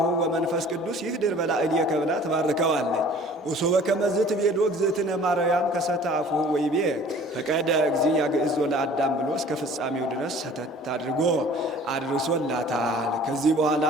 ወመንፈስ ቅዱስ ይህድር በላዕሌከ ብላ ትባርከዋለች። ወሶበ ከመዝ ትቤሎ እግዝእትነ ማርያም ከሰተ አፉሁ ወይቤ ፈቀደ እግዚእ ያግዕዞ ለአዳም ብሎ እስከ ፍጻሜው ድረስ ሰተት አድርጎ አድርሶላታል። ከዚህ በኋላ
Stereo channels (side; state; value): both; normal; correlation 0.49